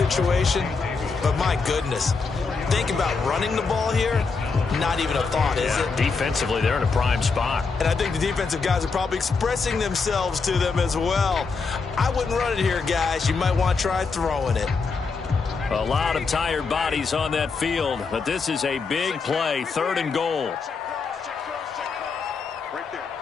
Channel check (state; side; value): quieter; right; 4.7 dB